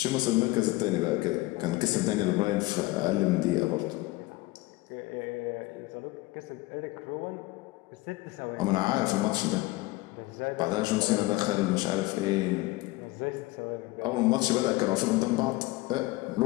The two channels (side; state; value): right; quieter; 20.4 dB